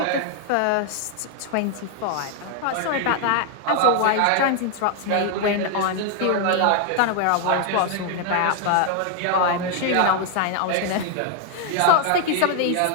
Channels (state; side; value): different; both; correlation 0.00